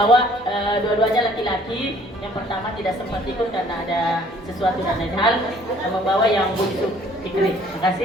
dua-duanya laki-laki. Yang pertama tidak sempat ikut karena ada sesuatu dan lain hal. Saya membawa yang bungsu Fikri. Terima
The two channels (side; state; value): both; normal; correlation 0.58